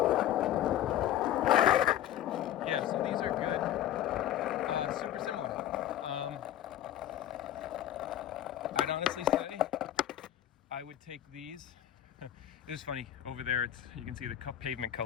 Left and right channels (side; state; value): right; quieter; 12.1 dB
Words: Yeah, so these are good. Super similar. I'd honestly say I would take these. It was funny over there. You can see the pavement